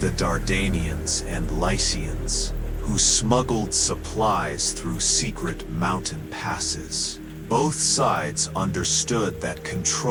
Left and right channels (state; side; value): identical; both; correlation 1.00